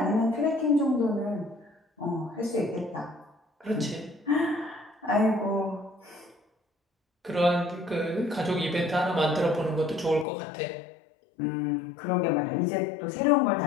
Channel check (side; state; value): right; drops out; at 10.2 s